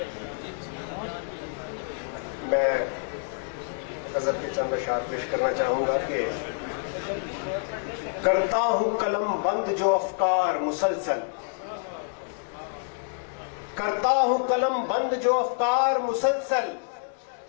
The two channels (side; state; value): right; silent; digital silence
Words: मैं हजरत के चंद अशार पेश करना चाहूंगा कि करता हूं कलम बंद जो अफकार मुसलसल, करता हूं कलम बंद जो अफकार मुसलसल,